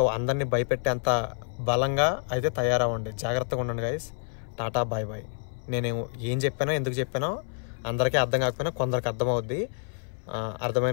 అందరినీ భయపెట్టేంత బలంగా అయితే తయారవ్వండి, జాగ్రత్తగా ఉండండి గైస్. Tata bye bye. నేను ఏం చెప్పానో ఎందుకు చెప్పానో అందరికీ అర్థం కాకపోయినా కొందరికి అర్థమవుద్ది,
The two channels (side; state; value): right; silent; 59 dB below the other